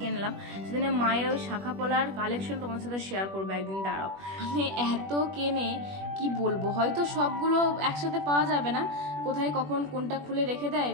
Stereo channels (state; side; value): late; left; 21 ms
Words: সেদিনে মায়ের ওই শাঁখা পলার কালেকশন তোমাদের সাথে শেয়ার করবো একদিন, দাঁড়াও। মানে এত কেনে কি বলবো, হয়তো সবগুলো একসাথে পাওয়া যাবে না, কোথায় কখন কোনটা খুলে রেখে দেয়,